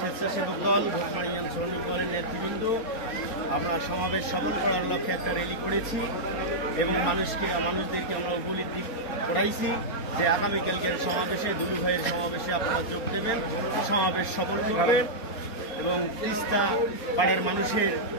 দল, ভোটমারি ইউনিয়ন শ্রমিক দলের নেতৃবৃন্দ আমরা সমাবেশ সফল করার লক্ষ্যে একটা র্যালি করেছি এবং মানুষদেরকে আমরা উপলব্ধি করাইছি যে আগামীকালকের সমাবেশে, দুলু ভাইয়ের সমাবেশে আপনারা যোগ দেবেন, সমাবেশ সফল করবেন এবং তিস্তা পাড়ের মানুষের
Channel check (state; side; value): late; right; 4.3 ms